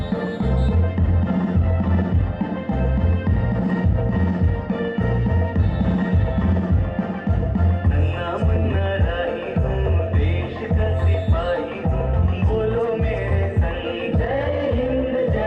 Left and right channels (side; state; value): both; identical; correlation 1.00